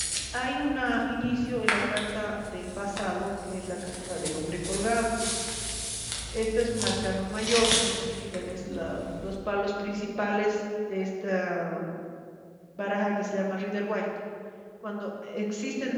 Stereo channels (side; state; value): both; identical; correlation 1.00